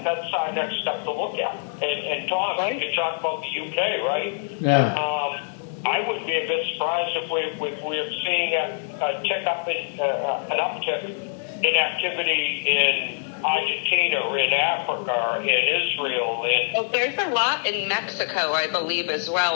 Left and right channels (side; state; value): right; silent; digital silence